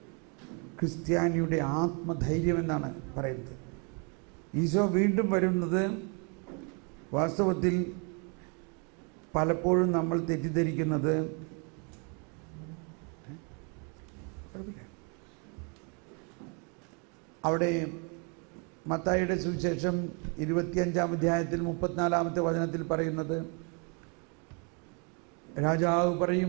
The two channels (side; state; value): left; quieter; 35.5 dB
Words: ക്രിസ്ത്യാനിയുടെ ആത്മധൈര്യമെന്നാണ് പറയുന്നത്. ഈശോ വീണ്ടും വരുന്നത് വാസ്തവത്തിൽ പലപ്പോഴും നമ്മൾ തെറ്റിദ്ധരിക്കുന്നത് അവിടെ മത്തായിയുടെ സുവിശേഷം 25-ാം അധ്യായത്തിൽ 34-ാമത്തെ വചനത്തിൽ പറയുന്നത്, രാജാവ്